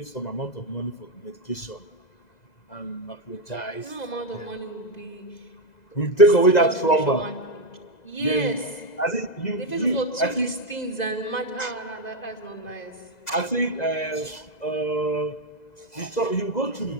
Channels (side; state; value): right; late; 2.0 ms